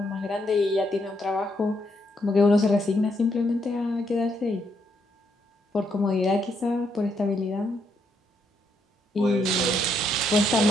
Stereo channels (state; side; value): normal; both; correlation 0.76